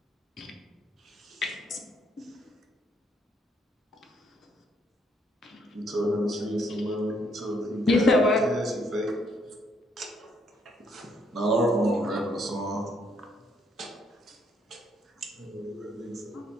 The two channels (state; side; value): normal; both; correlation 0.71